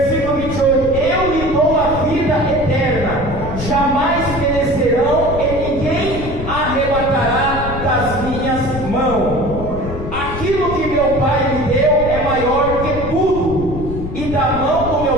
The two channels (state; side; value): noise; left; rumble, 7 dB below the sound